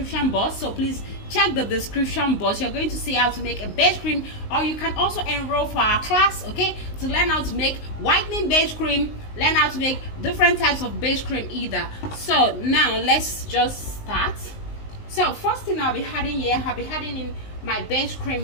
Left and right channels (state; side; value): late; right; 19 ms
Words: box, so please check the description box. You're going to see how to make a base cream, or you can also enroll for our class, okay, to learn how to make whitening base cream, learn how to make different types of base cream either. So now let's just start. So first thing I'll be adding here, I'll be adding in my base